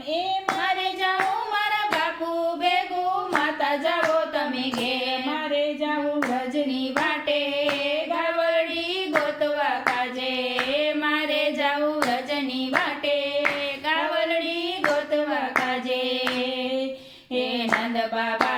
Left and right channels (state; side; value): identical; both; correlation 1.00